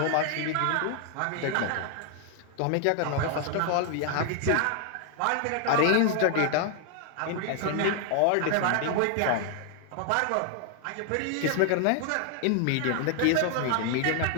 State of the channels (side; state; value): both; different; correlation 0.00